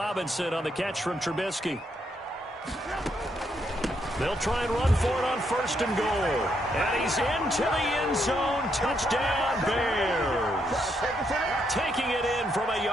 on the catch from Trubisky. They'll try and run for it on 1st and goal. And he's into the end zone. Touchdown, Bears. Taking it in from a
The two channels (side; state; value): both; normal; correlation 0.77